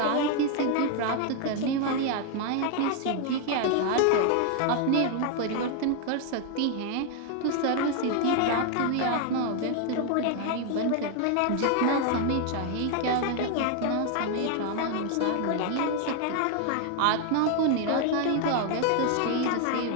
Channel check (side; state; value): both; different; correlation 0.01